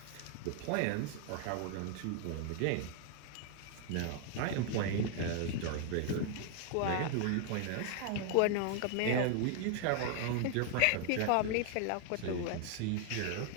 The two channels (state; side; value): different; both; correlation 0.00